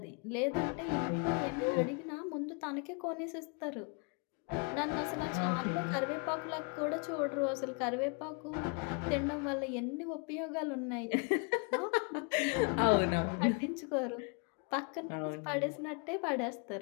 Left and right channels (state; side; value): quieter; right; 32.9 dB